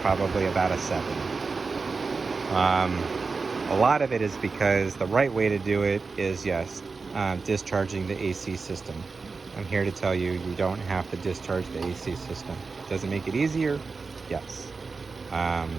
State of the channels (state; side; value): quieter; left; 4.4 dB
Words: about a 7. A lot of it is because the right way to do it is, yes, discharging the AC system. I'm here to tell you, you don't have to discharge the AC system. Does it make it easier? Yes.